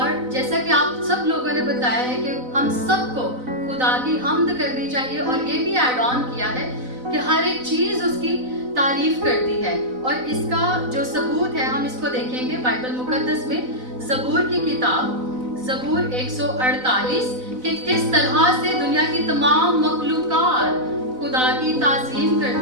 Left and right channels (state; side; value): late; left; 4.0 ms